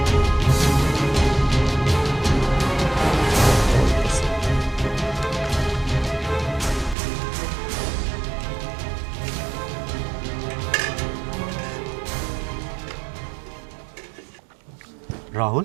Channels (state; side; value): drops out; left; at 7.0 s